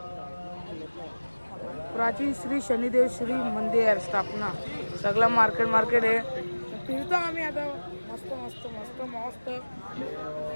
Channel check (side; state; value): both; inverted; correlation -1.00